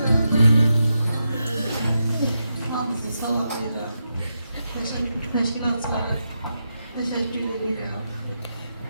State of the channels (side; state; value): both; inverted; correlation -0.86